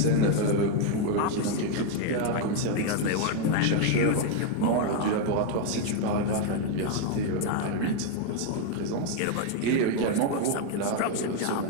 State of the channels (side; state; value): both; different; correlation 0.01